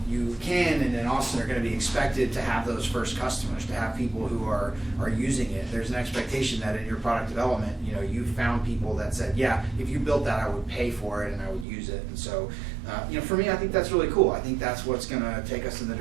and in Austin are going to be expected to have those first customers, to have people who are using it. There's an expectation that in your product development, you found people that said, yeah, if you built that, I would pay for it and I would use it. And so, for me, I think that's really cool. I think that's what's going to take us in the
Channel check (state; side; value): drops out; left; at 11.7 s